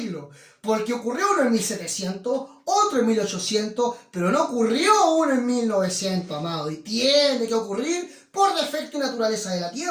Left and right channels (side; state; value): both; identical; correlation 1.00